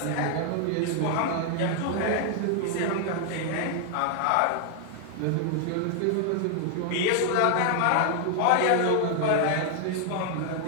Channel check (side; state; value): both; different; correlation 0.00